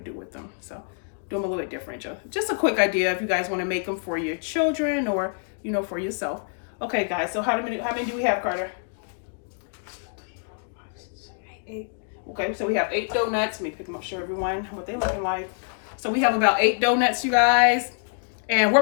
with them. So do them a little bit different. Just a quick idea if you guys want to make them for your children or, you know, for yourself. Okay, guys, so how many do we have, Carter? 8. Okay, so we have 8 donuts. Let me pick them up, show everyone what they're looking like. So we have about 8 donuts, you guys. And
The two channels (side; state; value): right; silent; 61 dB below the other